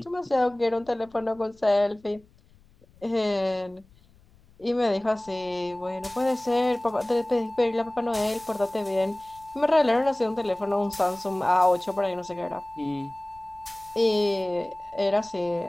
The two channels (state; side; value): noise; left; rumble, 28 dB below the sound